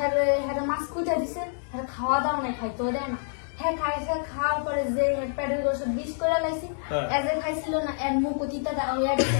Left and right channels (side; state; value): right; silent; digital silence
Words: হ্যাঁ মাছ কুইটা দিছে হ্যাঁ খাওয়া দাওয়া নাই খাইতেও দেয় না হ্যাঁ খাইছে খাওয়ার পরে যে প্যাডেল গোসব বিষ করে লাইছি এজ খাইছিল না এর মুখ অতীতা হয়ে গেছে